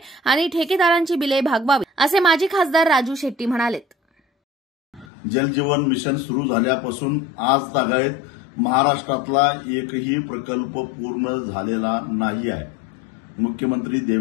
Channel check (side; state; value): right; drops out; at 5.1 s